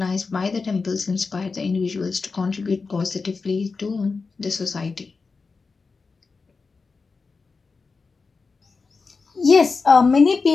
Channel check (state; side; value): quieter; right; 4.5 dB